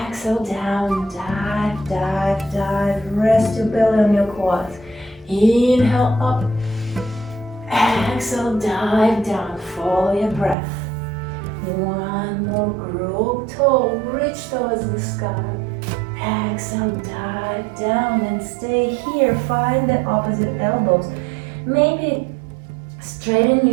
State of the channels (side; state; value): left; drops out; at 10.6 s